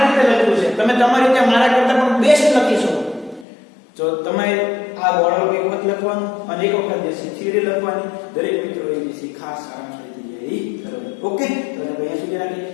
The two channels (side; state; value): right; drops out; at 3.5 s